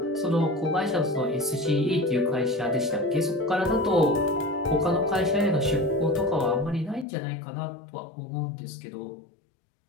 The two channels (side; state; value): right; drops out; at 7.1 s